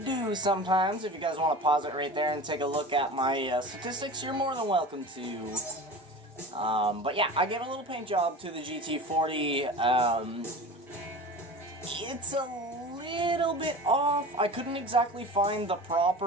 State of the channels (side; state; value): both; normal; correlation 0.34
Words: sometimes. If you guys want to pause it right there and take a look at my statistics, you're more than welcome to. But yeah, I gave a little paint job to the GT40. It's a little bit off. I couldn't exactly find the